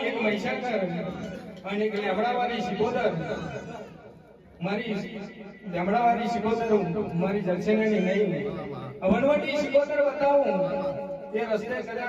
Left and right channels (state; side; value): identical; both; correlation 1.00